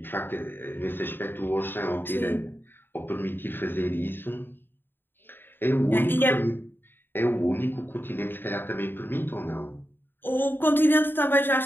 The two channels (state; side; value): late; right; 0.098 ms